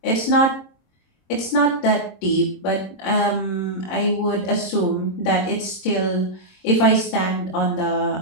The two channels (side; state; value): right; late; 26 ms